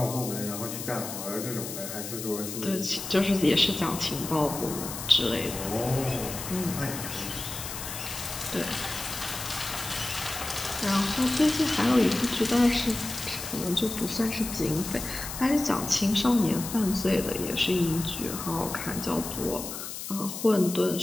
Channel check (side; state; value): left; noise; hiss, 8 dB below the sound